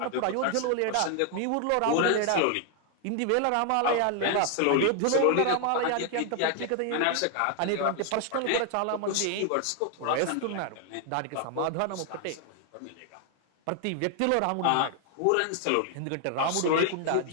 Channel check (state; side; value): different; both; correlation 0.00